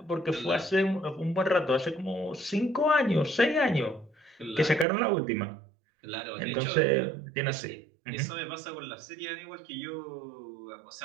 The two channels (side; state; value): left; drops out; at 4.9 s